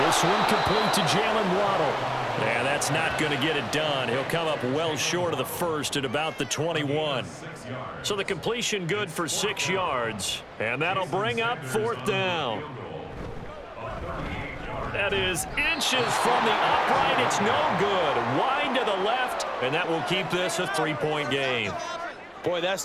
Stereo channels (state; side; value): identical; both; correlation 1.00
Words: one complete to Jalen Waddle. And that's not going to get it done. He'll come up well short of the 1st at about the 21. So the completion good for 6 yards. And that'll bring up 4th down. That is inches from the upright. It's no good. Wide to the left. And that will keep this a 3-point game. Boy, that's